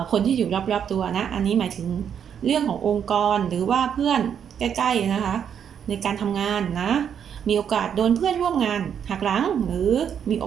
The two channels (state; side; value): quieter; left; 8.2 dB